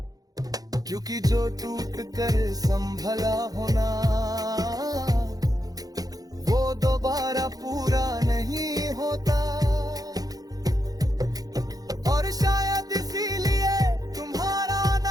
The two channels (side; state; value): left; late; 0.18 ms